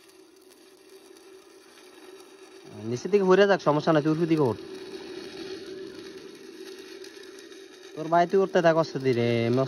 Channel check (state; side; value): identical; both; correlation 1.00